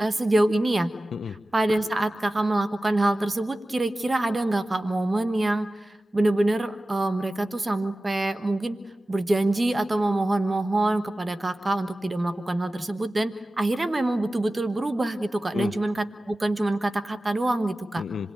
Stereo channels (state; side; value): normal; both; correlation 0.96